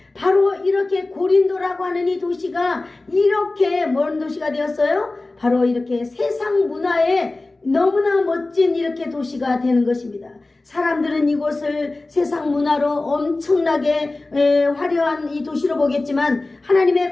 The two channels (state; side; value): quieter; right; 3.1 dB